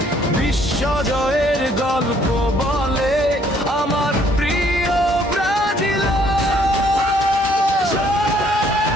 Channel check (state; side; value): normal; both; correlation 0.64